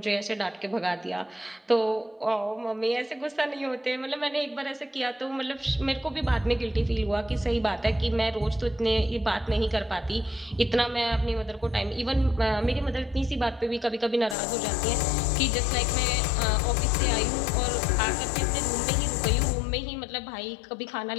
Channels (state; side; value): drops out; right; at 14.4 s